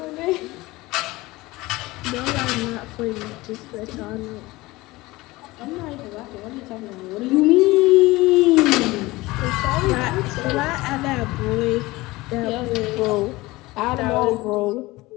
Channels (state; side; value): quieter; right; 20.4 dB